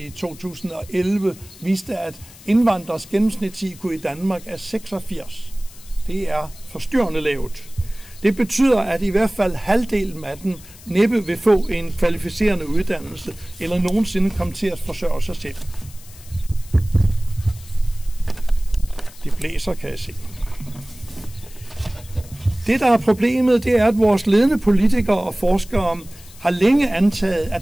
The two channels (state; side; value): noise; left; hiss, 20 dB below the sound